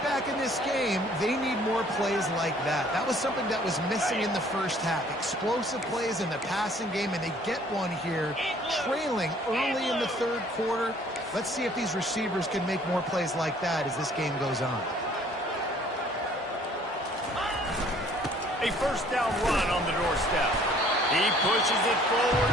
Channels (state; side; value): normal; both; correlation 0.57